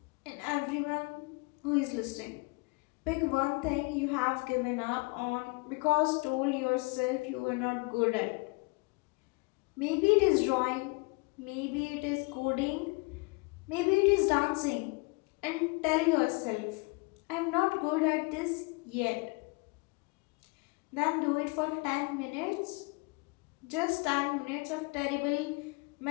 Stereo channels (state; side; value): quieter; right; 29.5 dB